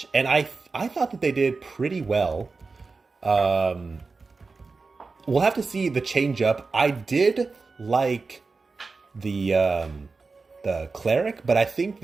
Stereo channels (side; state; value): left; quieter; 4.2 dB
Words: and I thought that they did pretty well. We'll have to see the change up. I did like the Cleric, but I think